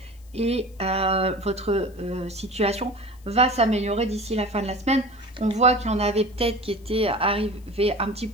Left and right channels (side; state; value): left; noise; hiss, 29 dB below the sound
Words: et votre situation va s'améliorer d'ici la fin de la semaine. On voit qu'il y en avait peut-être qui étaient arrivés un petit